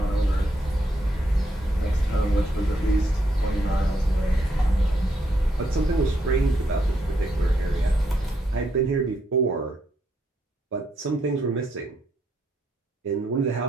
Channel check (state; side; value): normal; both; correlation 0.77